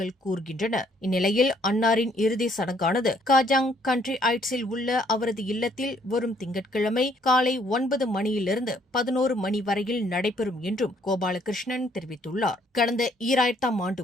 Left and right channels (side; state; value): both; normal; correlation 0.65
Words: கூறுகின்றன. இந்நிலையில் அன்னாரின் இறுதி சடங்கானது காஜாங் கண்ட்ரி ஐட்ஸில் உள்ள அவரது இல்லத்தில் வரும் திங்கட்கிழமை காலை 9 மணியிலிருந்து 11 மணி வரையில் நடைபெறும் என்றும் கோபாலகிருஷ்ணன் தெரிவித்துள்ளார். கடந்த 2000ஆம்